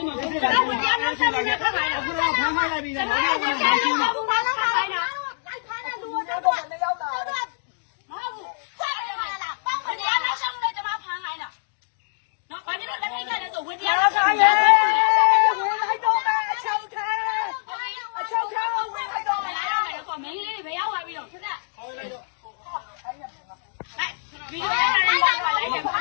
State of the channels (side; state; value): right; silent; digital silence